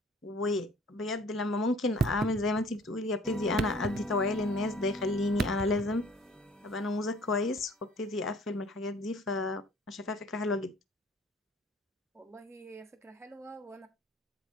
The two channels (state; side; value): normal; both; correlation 0.52